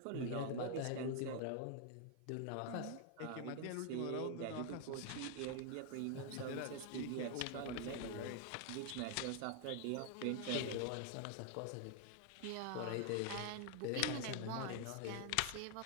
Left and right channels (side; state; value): both; different; correlation 0.00